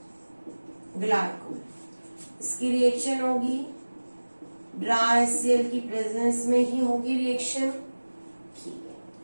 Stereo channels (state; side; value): inverted; both; correlation -1.00